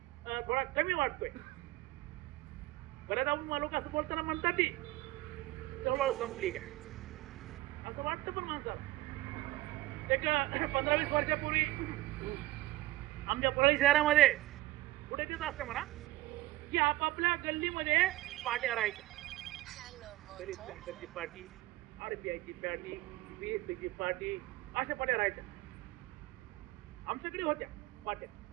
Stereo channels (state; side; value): quieter; left; 17.6 dB